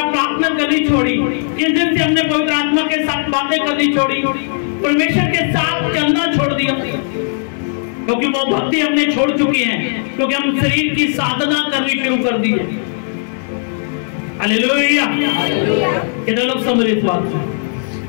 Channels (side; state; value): right; silent; 65 dB below the other